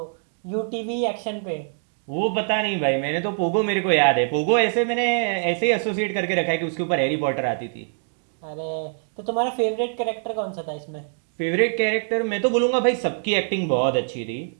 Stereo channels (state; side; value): silent; left; digital silence